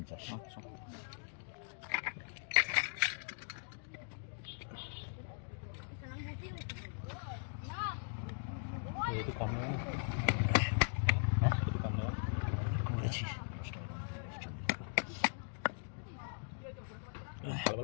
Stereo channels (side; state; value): right; silent; digital silence